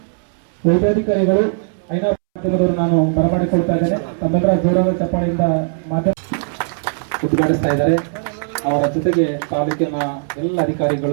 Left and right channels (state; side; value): silent; left; 67 dB below the other